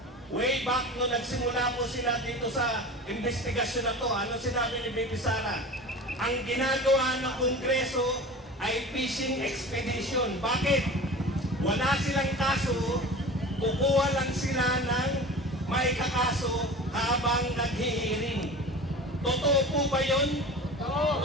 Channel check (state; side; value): normal; both; correlation 0.35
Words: way back no nagsimula po sila dito sa investigasyon na to, ano sinabi ni Bibi Sara? Ang ginagawa ng Kongreso ay fishing expedition. Bakit? Wala silang kaso, kukuha lang sila ng may kakaso habang naghihiring. Totoo po ba yun?